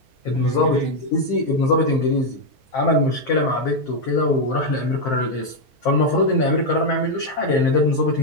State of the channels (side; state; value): both; normal; correlation 0.02